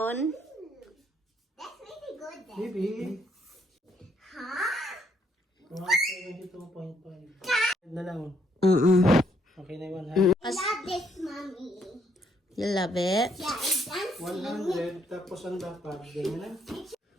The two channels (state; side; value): normal; both; correlation 0.70